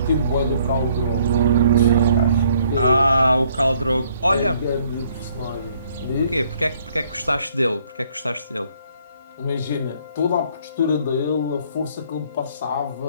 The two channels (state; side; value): inverted; both; correlation -0.63